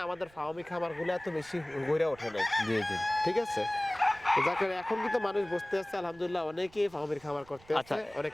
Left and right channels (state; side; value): noise; right; rumble, 25 dB below the sound